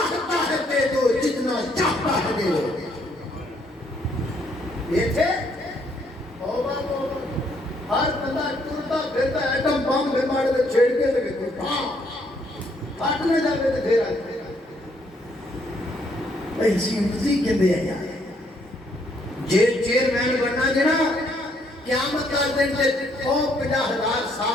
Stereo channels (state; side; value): normal; both; correlation 0.69